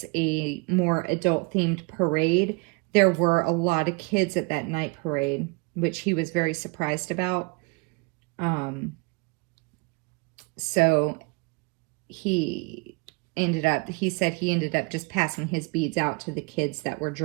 a more adult themed parade, there were a lot of kids at that night parade, which he was very surprised about. So he said he ended up just passing his beads out to the kids that were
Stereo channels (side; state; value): left; quieter; 29.7 dB